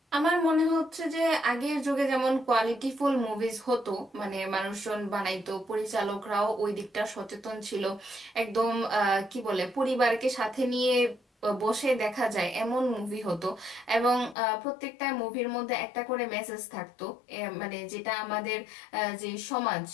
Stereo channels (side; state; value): right; drops out; at 14.4 s